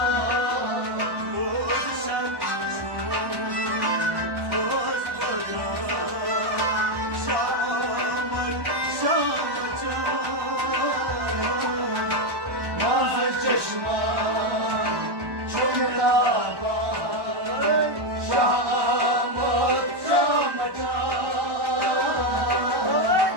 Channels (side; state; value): left; late; 1.1 ms